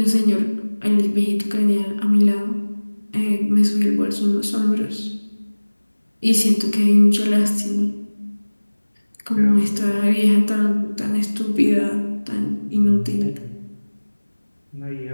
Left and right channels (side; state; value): both; inverted; correlation -1.00